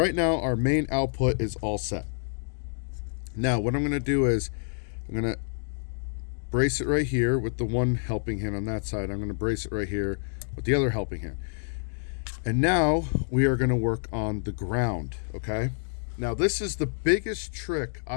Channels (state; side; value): silent; right; digital silence